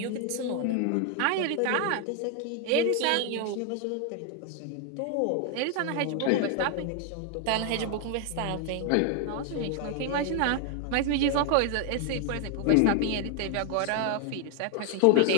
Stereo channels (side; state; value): both; different; correlation 0.00